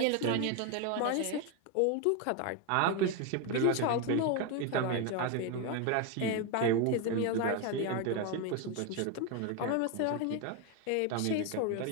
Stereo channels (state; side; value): different; both; correlation 0.02